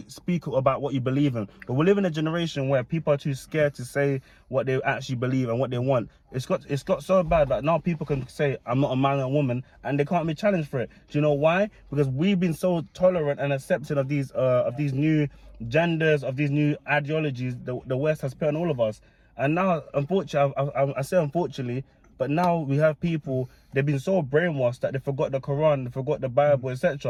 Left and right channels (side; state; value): both; identical; correlation 1.00